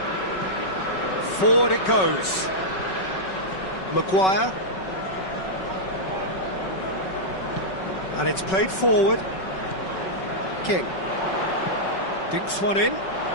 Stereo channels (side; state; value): right; late; 5.3 ms